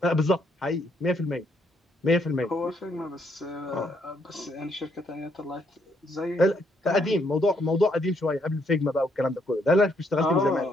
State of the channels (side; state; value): both; normal; correlation 0.72